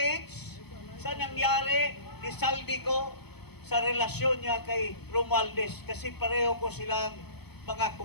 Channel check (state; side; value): late; right; 0.97 ms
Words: sa nangyari ni Saldico sa relasyon niya kay Romualdez kasi pareho ko silang mga